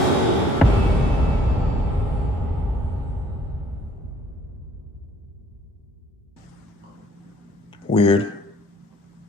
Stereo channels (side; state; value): both; normal; correlation 0.60